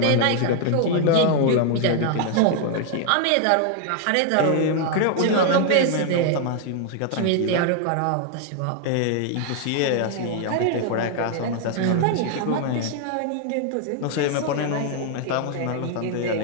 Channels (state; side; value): different; both; correlation 0.00